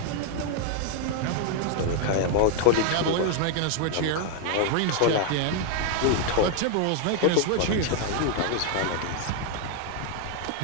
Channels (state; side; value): different; both; correlation 0.01